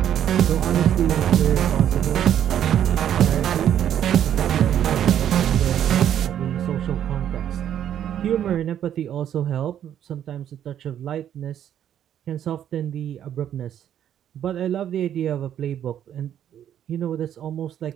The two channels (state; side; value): quieter; left; 10.2 dB